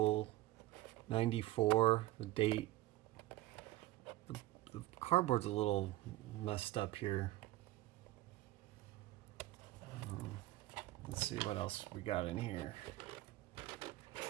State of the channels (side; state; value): left; quieter; 16.7 dB